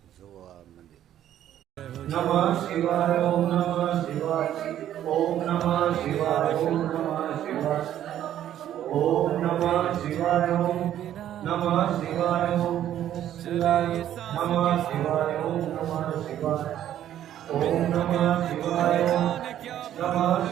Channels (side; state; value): left; quieter; 11.4 dB